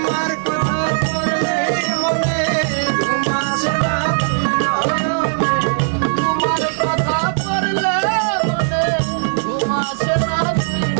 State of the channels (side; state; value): left; silent; 67 dB below the other